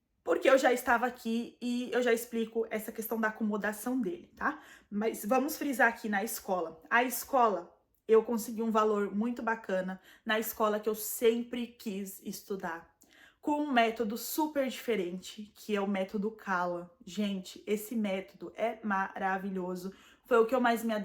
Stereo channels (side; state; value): both; identical; correlation 1.00